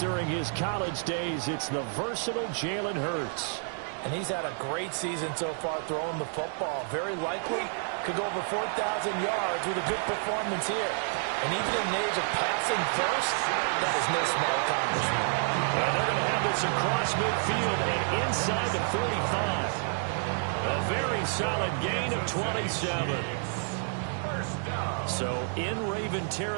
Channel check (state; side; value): silent; left; 56 dB below the other